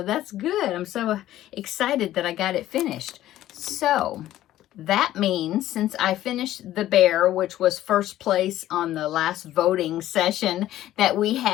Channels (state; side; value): quieter; right; 13.7 dB